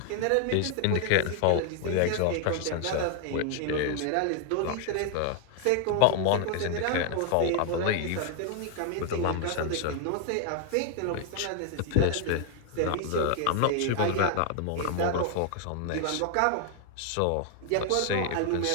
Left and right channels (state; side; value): different; both; correlation 0.00